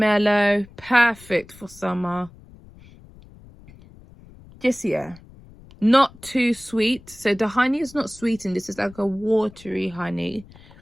perfect for summer. Just, yeah, not too sweet. So the honey is not sweetened. This is like a watery honey.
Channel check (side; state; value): left; noise; rumble, 22 dB below the sound